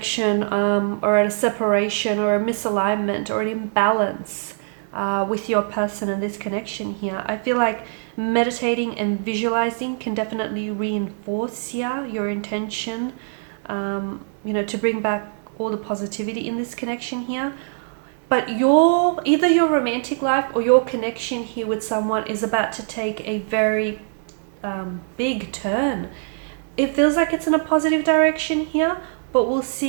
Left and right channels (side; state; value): left; silent; digital silence